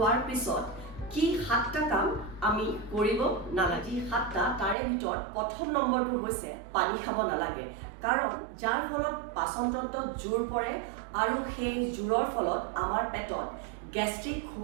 পিছত কি 7টা কাম আমি কৰিব নালাগে 7টা তাৰে ভিতৰত প্ৰথম নম্বৰটো হৈছে পানী খাব নালাগে কাৰণ যাৰ ফলত পাচনতন্ত্ৰত জোৰ পৰে আৰু সেই জোৰৰ ফলত আমাৰ পেটত গ্যাস্ট্ৰিক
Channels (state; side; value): drops out; left; at 4.8 s